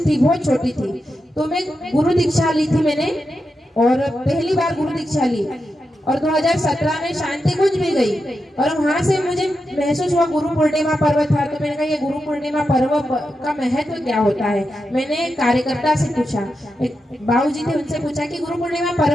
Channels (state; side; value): normal; both; correlation 0.88